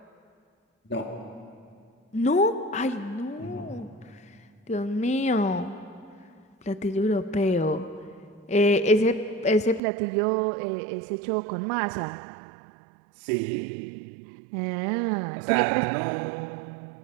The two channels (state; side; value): drops out; left; at 9.8 s